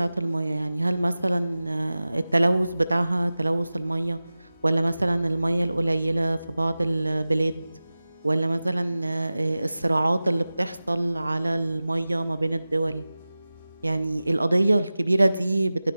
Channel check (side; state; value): both; inverted; correlation -0.96